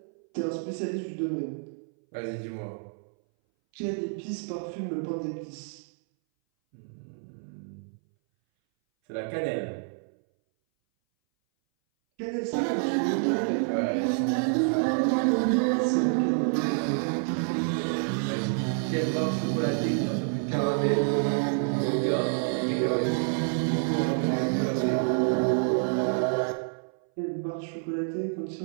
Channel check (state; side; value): silent; left; 59 dB below the other